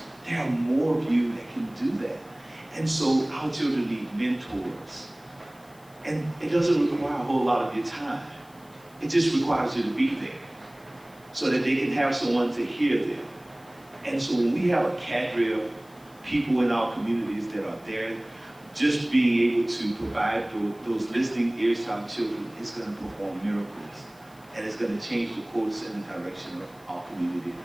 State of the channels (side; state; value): left; noise; hiss, 28 dB below the sound